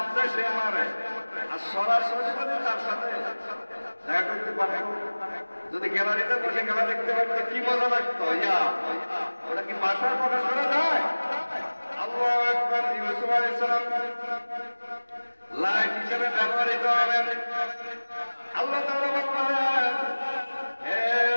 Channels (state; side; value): inverted; both; correlation -1.00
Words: দেয় সে মারে। আর সরাসরি যদি তার সাথে দেখা করতে পারে, যদি গ্যালারিতে বসে খেলা দেখতে পারতো কি মজা লাগতো। ওটা কি ভাষায় প্রকাশ করা যায়? আল্লাহু আকবার। ইউসুফ আলাইহিস সালাম লাইট হিসেবে ব্যবহৃত হবে। আল্লাহ তাআলা বললেন, হে